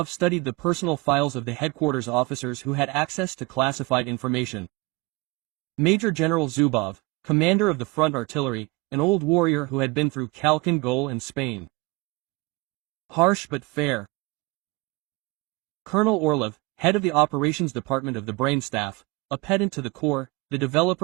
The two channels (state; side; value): quieter; left; 24.4 dB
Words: studied the personal files of the headquarters officers who had access to classified information. Major General Zubov, commander of the front artillery, an old warrior who had been through Khalkhin Gol and Spain. Harsh but fair. Colonel Orlov, head of the operations department of the brain staff, a pedant to the core, the